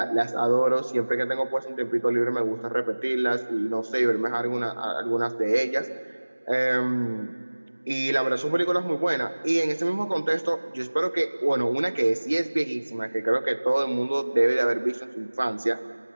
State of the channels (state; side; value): inverted; both; correlation -1.00